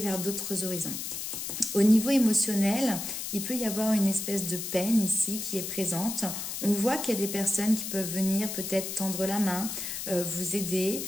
d'autres horizons. Au niveau émotionnel, il peut y avoir une espèce de peine ici qui est présente. On voit qu'il y a des personnes qui peuvent venir peut-être tendre la main, vous aider,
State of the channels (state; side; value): noise; left; hiss, 5 dB below the sound